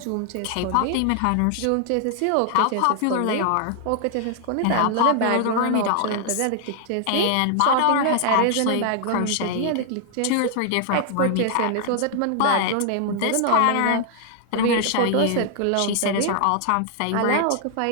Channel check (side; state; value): both; different; correlation 0.00